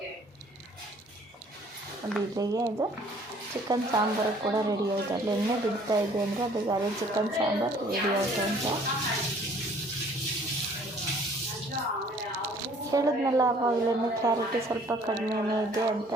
ಅದು ಇಲ್ಲಿಗೆ ಇದು ಚಿಕನ್ ಸಾಂಬಾರು ಕೂಡ ರೆಡಿ ಆಯಿತು. ಅಲ್ಲಿ ಎಣ್ಣೆ ಬಿಡ್ತಾ ಇದೆ ಅಂದರೆ ಅದಕ್ಕೆ ಅದೇ ಚಿಕನ್ ಸಾಂಬಾರು ರೆಡಿ ಆಯಿತು ಅಂತ ಹೇಳಿದ್ನಲ್ಲ. ಆವಾಗಲೇ ಕ್ಲಾರಿಟಿ ಸ್ವಲ್ಪ ಕಡಿಮೆನೇ ಇದೆ ಅಂತ.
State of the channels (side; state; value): both; normal; correlation 0.56